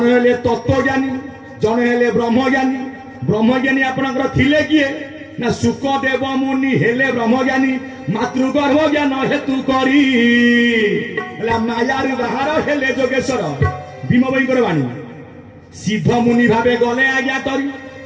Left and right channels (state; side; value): identical; both; correlation 1.00